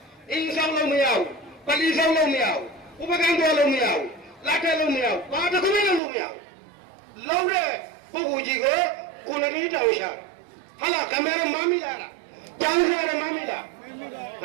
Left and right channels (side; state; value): left; drops out; at 6.0 s